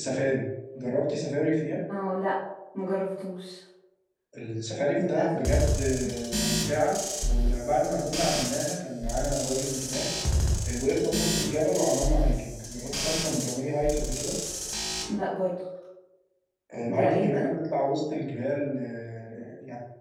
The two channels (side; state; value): both; identical; correlation 1.00